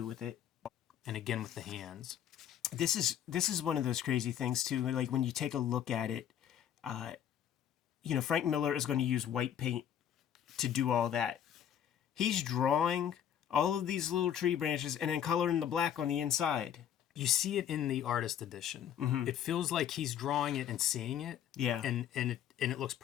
with it. And again with the hands. This is one of those crazy things too. Like when you take a look at it, Frank Miller is going to use white paint to do all that. He's drawing all of these little tree branches and then coloring the black on the inside. You see it in the artist edition. It feels like he's drawing it and seeing it. Yeah. And it looks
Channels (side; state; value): right; quieter; 9.9 dB